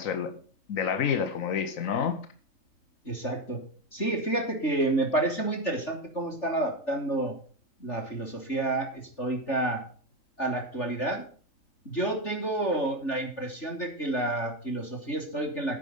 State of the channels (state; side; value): late; right; 3.4 ms